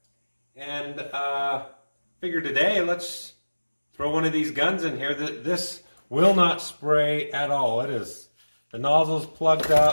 and figured today let's throw one of these guns in here. This will not spray at all. The nozzle's plugged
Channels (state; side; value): inverted; both; correlation -1.00